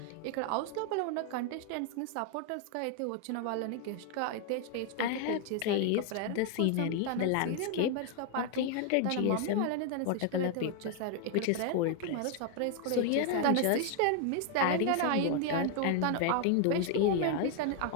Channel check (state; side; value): different; both; correlation 0.00